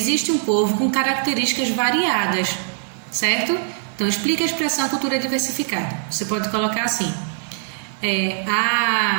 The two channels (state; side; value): silent; left; 63 dB below the other